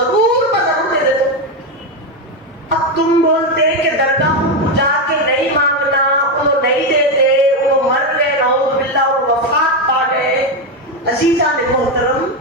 اب تم بولتے کہ درگاہوں کو جا کے نہیں مانگنا، وہ نہیں دیتے، وہ مر گئے، نعوذ باللہ، وہ وفات پا گئے۔ عزیزان محترم،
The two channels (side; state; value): both; normal; correlation 0.09